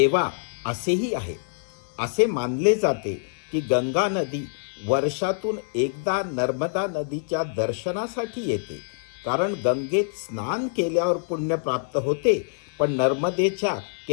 असेही आहे. असे मानले जाते की गंगा नदी वर्षातून एकदा नर्मदा नदीच्या दर्शनासाठी येते, कारण गंगेत स्नान केल्यावर पुण्य प्राप्त होते, पण नर्मदेच्या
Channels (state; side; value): silent; right; 58 dB below the other